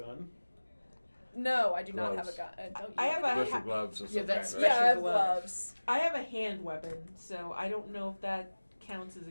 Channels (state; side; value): inverted; both; correlation -1.00